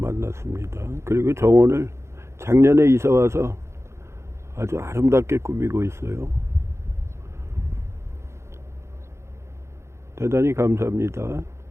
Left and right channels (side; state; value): left; late; 0.13 ms